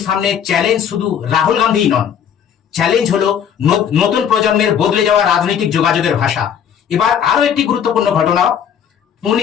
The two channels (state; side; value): quieter; right; 8.4 dB